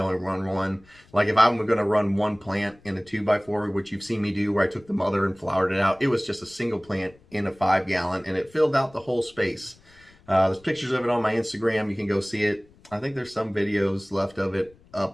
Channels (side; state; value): left; noise; rumble, 28 dB below the sound